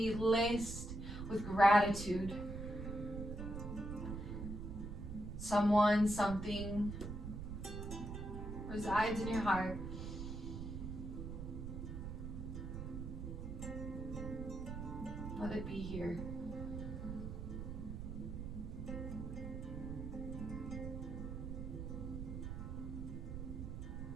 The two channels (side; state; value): right; noise; rumble, 6 dB below the sound